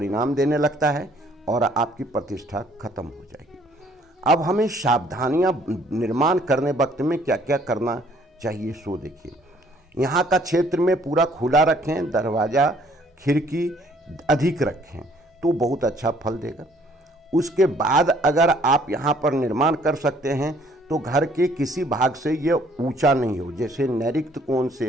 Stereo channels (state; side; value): normal; both; correlation 0.61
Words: देने लगता है और आपकी प्रतिष्ठा खत्म हो जाएगी। अब हमें सावधानियां निर्माण करने वक्त में क्या क्या करना चाहिए सो देखिए। यहाँ का क्षेत्र में पूरा खुला रखें, दरवाज़ा खिड़की अधिक रखें तो बहुत अच्छा फल देगा। उसके बाद अगर आप यहाँ पर निर्माण कर सकते हैं तो घर के किसी भाग से ये ऊंचा नहीं हो, जैसे नैऋत्य कोण